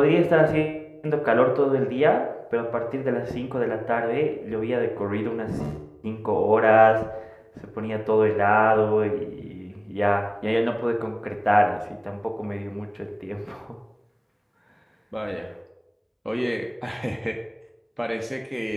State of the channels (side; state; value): both; identical; correlation 1.00